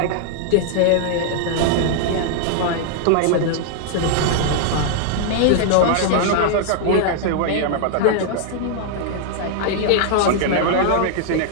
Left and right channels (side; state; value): both; different; correlation 0.00